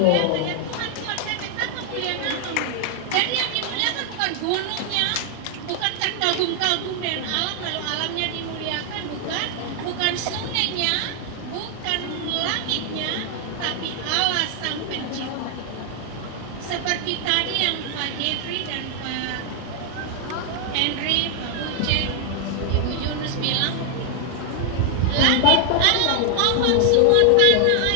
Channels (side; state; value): both; different; correlation 0.00